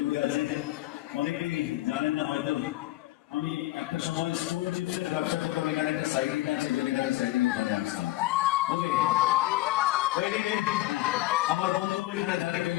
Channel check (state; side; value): quieter; right; 17.1 dB